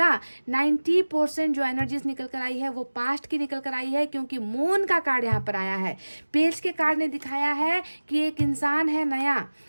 90% जो एनर्जीज निकल कर आई है वो पास्ट की निकल कर आई है, क्योंकि मून का कार्ड यहाँ पर आया है। पेज के कार्ड ने दिखाया है कि एक इंसान है नया,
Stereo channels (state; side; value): inverted; both; correlation -1.00